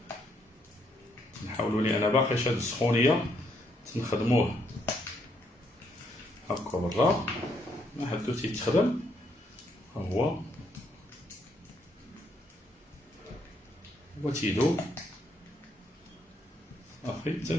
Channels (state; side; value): normal; both; correlation 0.73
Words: نحاولوا لي انا باقي هاد السخونيه تنخدموه هكا برا، ما حدو تيتخدم. ها هو تيدوب صافي،